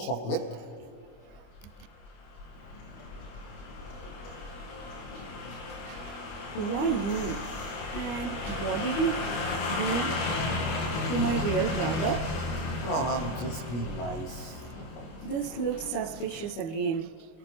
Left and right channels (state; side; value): late; right; 25 ms